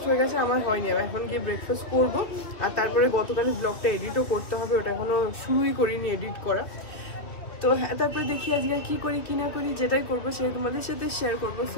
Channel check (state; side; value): late; right; 2.8 ms